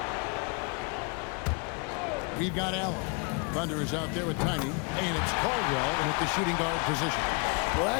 We've got Allen. Thunder is out there with Tiny, and it's Caldwell in at the shooting guard position. Well,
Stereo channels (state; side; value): quieter; right; 35.1 dB